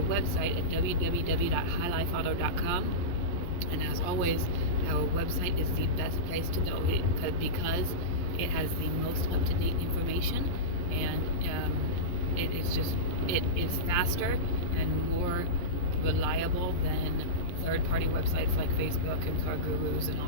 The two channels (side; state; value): right; late; 11 ms